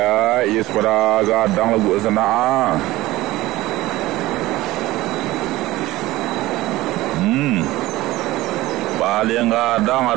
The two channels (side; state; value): left; quieter; 17.9 dB